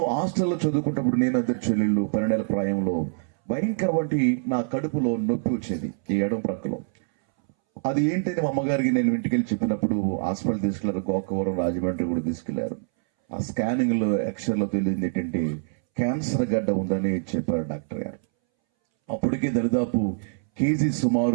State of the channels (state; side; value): silent; left; 62 dB below the other